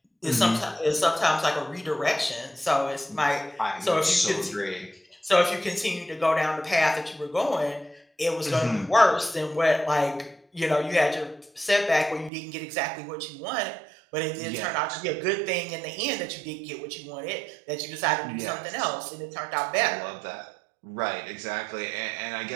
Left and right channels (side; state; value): left; drops out; at 12.3 s